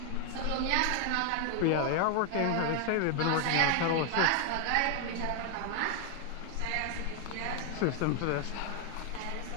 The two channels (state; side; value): different; both; correlation 0.00